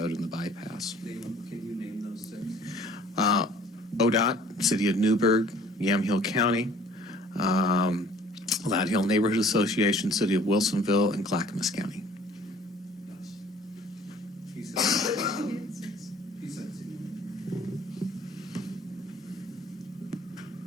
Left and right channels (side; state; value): both; normal; correlation 0.53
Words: and the bypass. Can you name those 6? ODOT, City of Newberg, Yamhill County, Lad Hill Neighborhood Association, City of Wilsonville, and Clackamas County. He said 6.